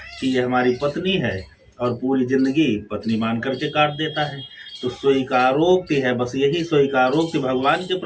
कि ये हमारी पत्नी है, और पूरी जिंदगी पत्नी मान करके काट देता है। तो स्वीकारोक्ति है, बस यही स्वीकारोक्ति भगवान के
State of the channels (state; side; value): identical; both; correlation 1.00